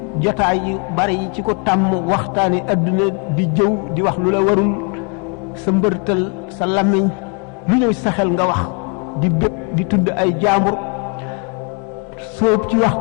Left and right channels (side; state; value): right; quieter; 36.0 dB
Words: jotaay yu bari yi ci ko tàmm waxtaani adduna di jëw di wax lu la warul sa mbërtal sa làmmiñ lu ñëw sa xel nga wax di bépp di tudd ay jaambur sóob ci